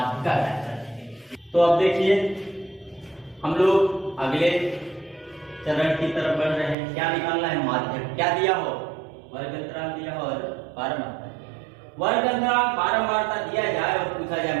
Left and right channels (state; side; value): drops out; left; at 6.8 s